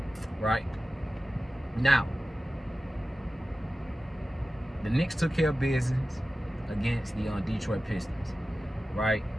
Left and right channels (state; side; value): normal; both; correlation 0.95